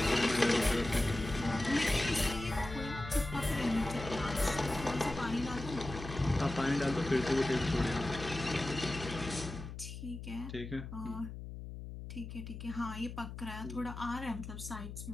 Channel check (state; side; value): noise; left; hum, 9 dB below the sound